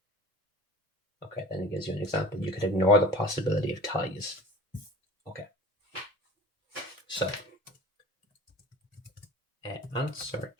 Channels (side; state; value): both; normal; correlation 0.40